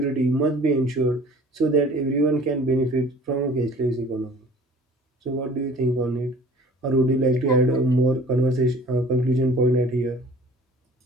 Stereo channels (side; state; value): both; normal; correlation 0.48